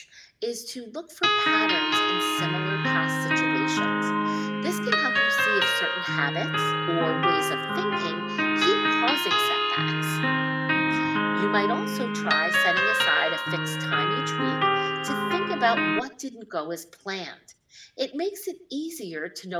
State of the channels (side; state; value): both; identical; correlation 1.00